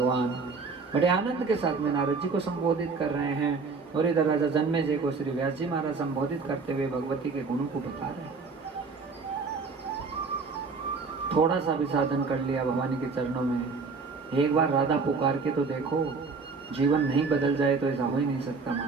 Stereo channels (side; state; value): left; quieter; 4.6 dB